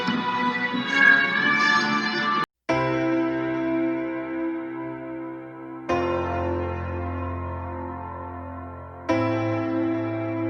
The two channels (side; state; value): both; identical; correlation 1.00